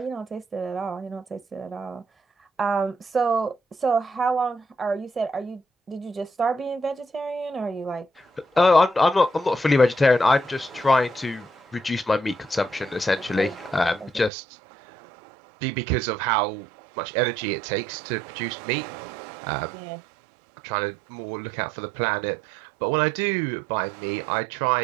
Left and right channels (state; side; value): drops out; left; at 14.3 s